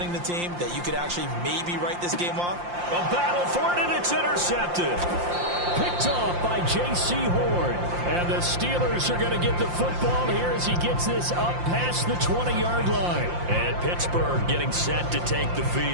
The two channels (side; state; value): left; late; 5.7 ms